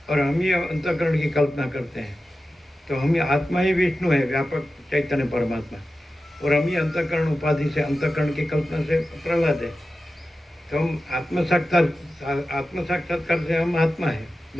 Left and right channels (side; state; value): both; normal; correlation 0.93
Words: और हम ही अंतःकरण की कल्पना करते हैं. तो हम ही आत्मा ही विष्णु है, व्यापक चैतन्य परमात्मा, और हम ही अंतःकरण उपाधि से, अंतःकरण की कल्पना से प्रहलाद है. तो हम आत्म साक्षात्कार से हम आत्मा है,